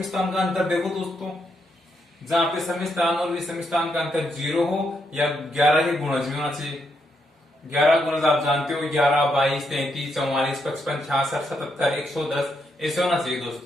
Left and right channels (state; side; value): normal; both; correlation 0.79